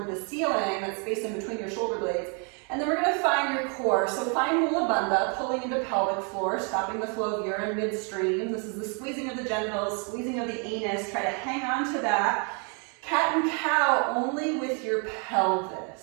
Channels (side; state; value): left; quieter; 37.7 dB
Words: the ceiling, that space in between your shoulder blades. And then we're going to find your core. So find Mula Bandha, pulling into pelvic floor, stopping the flow of urine midstream. This is the squeezing of the genitals, squeezing of the anus. Try to hang on to that. Cat and cow only with your